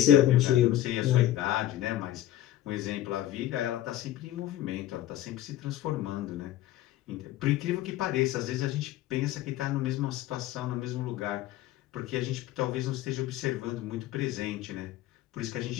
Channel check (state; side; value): quieter; right; 13.4 dB